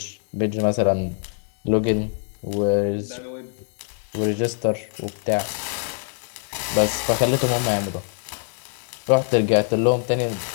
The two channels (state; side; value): silent; right; 60 dB below the other